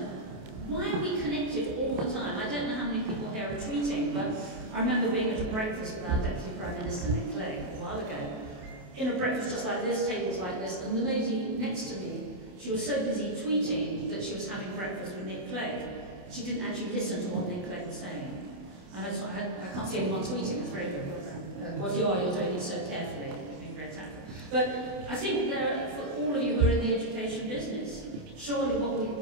Why are we connected all the time? I don't know how many people here are tweeting, but I remember being at a breakfast with our Deputy Prime Minister, Nick Clegg, a while ago. In a breakfast just like this, tables like this, and the lady next to me, she was so busy tweeting that she was having breakfast with Nick Clegg. She didn't actually listen to what Nick Clegg was saying. And I can't see anyone tweeting, it's very good. What you are, you're doing it so carefully. It's been very tactful. But I think for all of you who are in the education business, surely what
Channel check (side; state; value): left; late; 28 ms